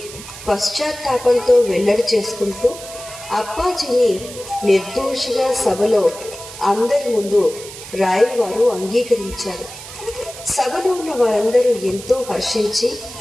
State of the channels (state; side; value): noise; right; hiss, 14 dB below the sound